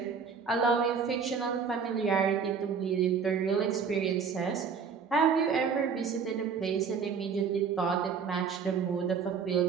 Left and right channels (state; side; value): quieter; left; 6.1 dB